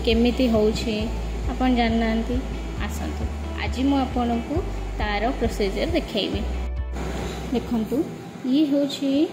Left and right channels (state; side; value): identical; both; correlation 1.00